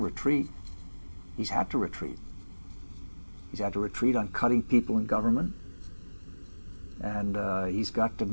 He's had to retreat. He's had to retreat on cutting people in government, and he's got to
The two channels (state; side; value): inverted; both; correlation -1.00